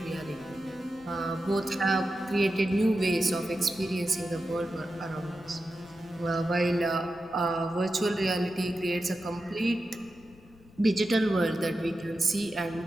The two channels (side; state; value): left; noise; rumble, 25 dB below the sound